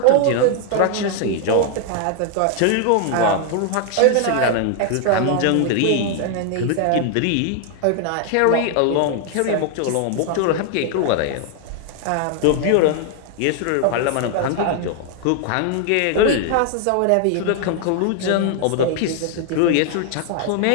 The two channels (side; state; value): both; different; correlation 0.00